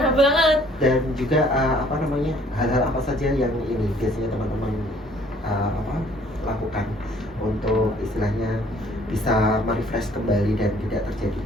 banget. Dan juga hal-hal apa saja yang ini biasanya teman-teman lakukan untuk istilahnya bisa merefresh kembali dan tidak terjadi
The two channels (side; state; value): both; normal; correlation 0.58